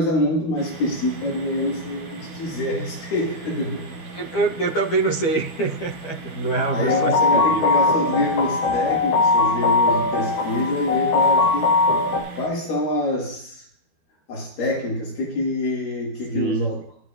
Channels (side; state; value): right; late; 12 ms